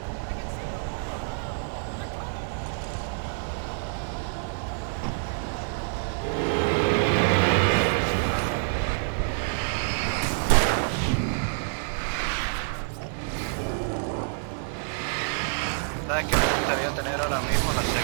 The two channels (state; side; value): silent; left; digital silence